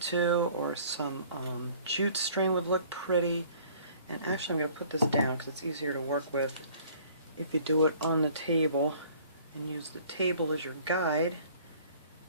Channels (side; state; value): both; inverted; correlation -0.54